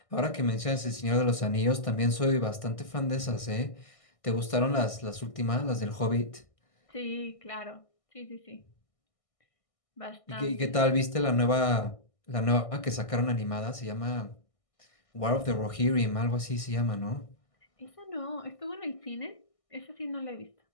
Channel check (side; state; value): right; late; 1.6 ms